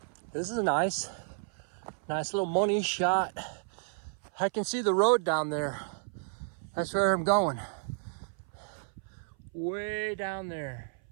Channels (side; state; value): left; silent; 57 dB below the other